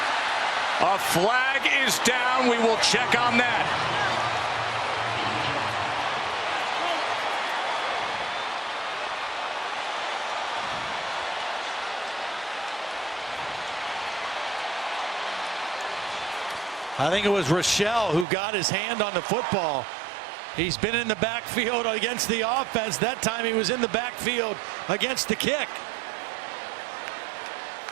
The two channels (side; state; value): left; drops out; at 18.2 s